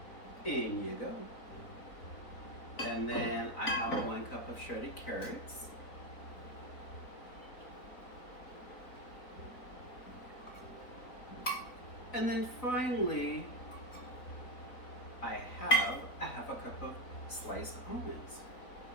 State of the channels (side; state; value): right; late; 4.0 ms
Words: In you go. And then I have 1 cup of shredded carrots. And then finally, I have a half a cup of sliced almonds.